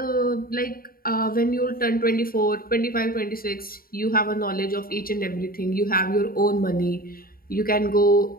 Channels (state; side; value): late; right; 0.43 ms